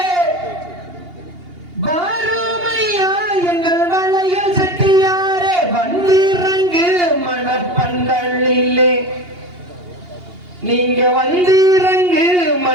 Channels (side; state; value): left; late; 2.8 ms